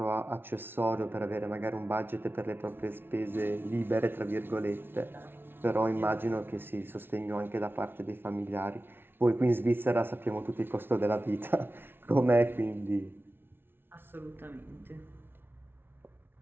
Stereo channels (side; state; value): left; late; 0.11 ms